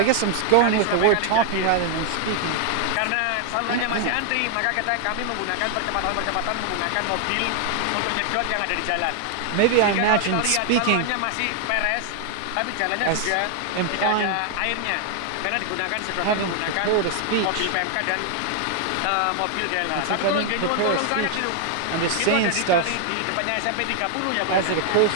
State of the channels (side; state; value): both; different; correlation 0.00